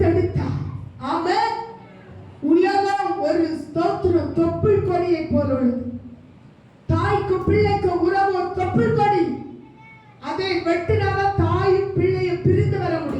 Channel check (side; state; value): both; identical; correlation 1.00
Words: ஆமென். உலகம் ஒரு ஸ்தோத்திரம் தொப்புள் கொடியை போல உள்ளது. தாய்க்கு பிள்ளைக்கு உறவு ஒரு தொப்புள் கொடி. அதை வெட்டினாதான் தாயும் பிள்ளையும் பிரிந்து வர